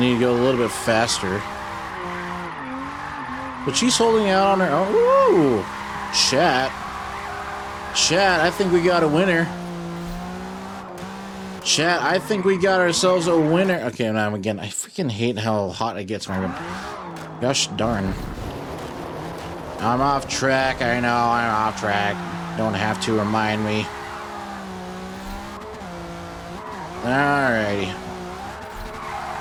to go a little bit faster. But she's holding out on her own. Ooh! Chat. Chat, I think we got a winner. Chat, I think we got ourselves a winner. Okay, now again, I freaking hate how hot it gets in my room. Gosh darn. I'm off track. I know I'm off track. Don't have to remind me. Alrighty.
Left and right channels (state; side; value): identical; both; correlation 1.00